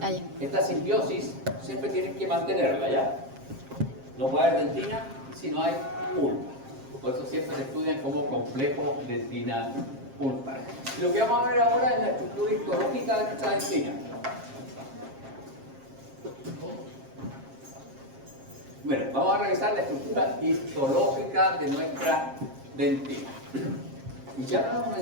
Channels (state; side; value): late; left; 7.5 ms